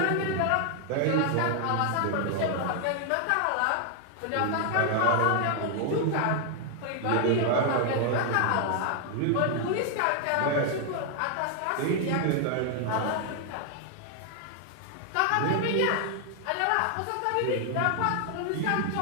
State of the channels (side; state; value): both; different; correlation 0.00